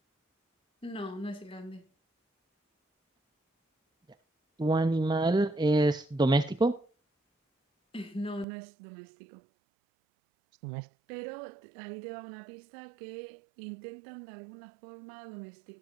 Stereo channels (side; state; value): left; drops out; at 8.5 s